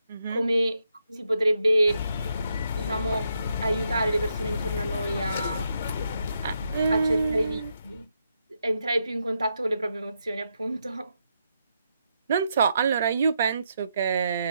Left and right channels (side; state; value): both; inverted; correlation -0.81